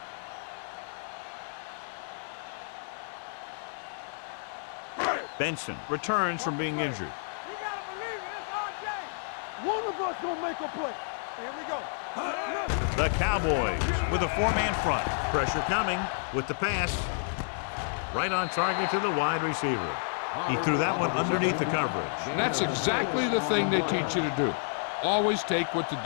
Benson returns from being injured. You gotta believe it. It's RJ. One of us gonna make a play. Here we go. The Cowboys with a 4-man front. Pressure coming with the pass. Right on target to the wide receiver. He threw that one underneath the coverage. That's exactly the thing they teach you to do. Always take what the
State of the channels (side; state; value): right; silent; digital silence